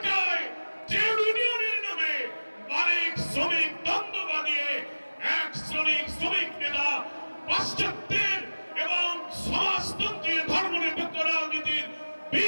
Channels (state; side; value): inverted; both; correlation -1.00